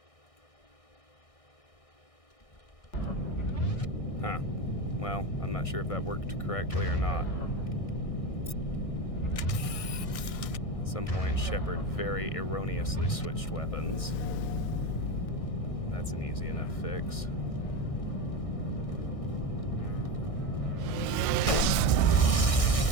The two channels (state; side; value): late; right; 1.6 ms